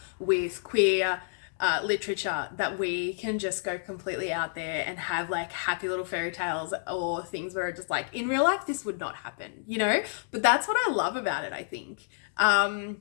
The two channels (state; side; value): silent; right; digital silence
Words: with queer literature that we can just go completely out there and have like happy little fairy tales or things where it's just like in real life this would not happen, you know? But that's what I love about it, I think.